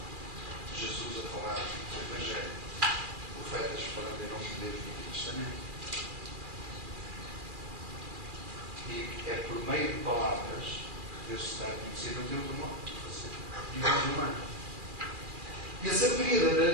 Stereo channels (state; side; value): late; left; 2.4 ms